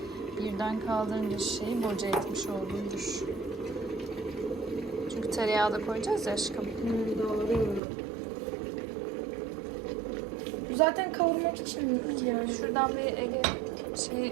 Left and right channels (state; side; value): drops out; left; at 7.8 s